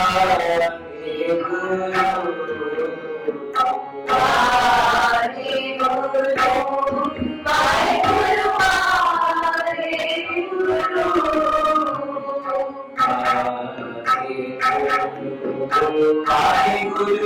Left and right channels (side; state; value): both; identical; correlation 1.00